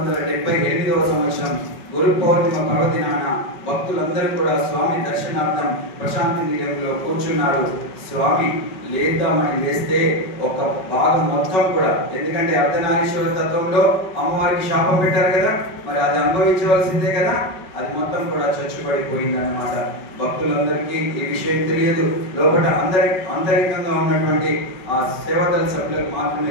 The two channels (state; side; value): late; right; 5.3 ms